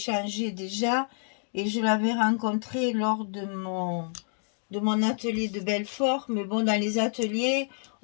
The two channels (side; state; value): right; silent; 59 dB below the other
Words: déjà. Et je l'avais rencontrée lors de mon atelier de Belfort. Mais bon, dans les ateliers,